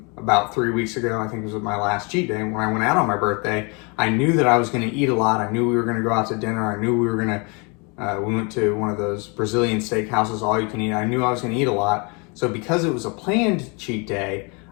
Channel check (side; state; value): right; quieter; 31.6 dB